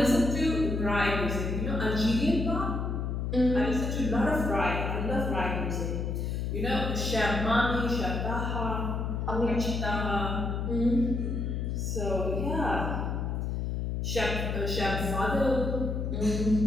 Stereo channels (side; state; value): left; noise; hum, 1 dB below the sound